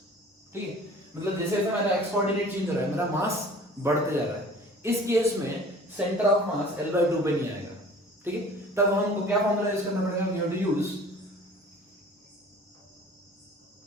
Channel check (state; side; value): normal; both; correlation 0.47